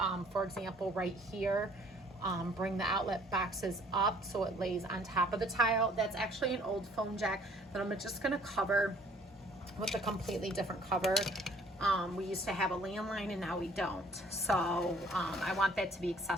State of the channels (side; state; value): both; normal; correlation 0.58